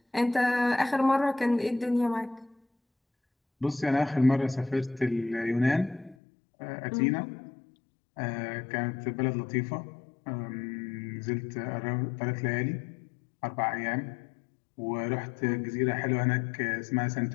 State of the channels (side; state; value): right; drops out; at 6.2 s